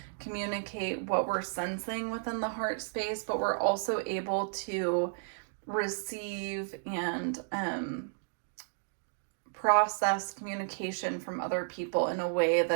communicate what we're sensing within the heart space, but we're also able to receive and process communication from other people in a way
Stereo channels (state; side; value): silent; left; digital silence